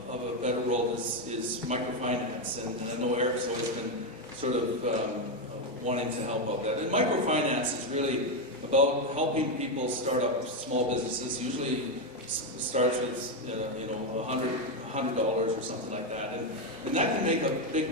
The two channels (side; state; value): both; normal; correlation 0.07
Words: a better world is microfinance, and I know Eric's always been sort of wanting to help out that. And microfinance is really about helping people start up small businesses. Usually starts with $100 or something like that, and that can make a big